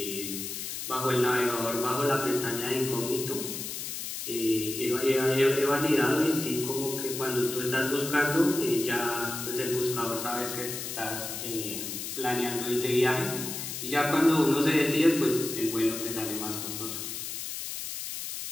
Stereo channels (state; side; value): noise; left; hiss, 6 dB below the sound